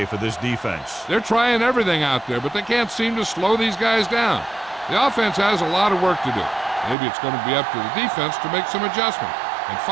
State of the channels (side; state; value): left; drops out; at 7.0 s